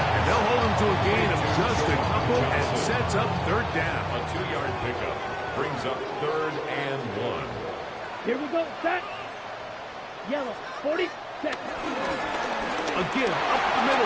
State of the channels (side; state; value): both; identical; correlation 1.00